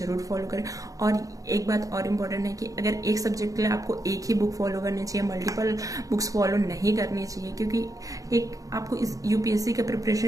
फॉलो करें। और एक बात और इम्पोर्टेंट है कि अगर एक सब्जेक्ट के लिए आपको एक ही बुक फॉलो करनी चाहिए, मल्टीपल बुक्स फॉलो नहीं करनी चाहिए, क्योंकि एक आपको इस यूपीएससी का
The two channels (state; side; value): late; left; 0.17 ms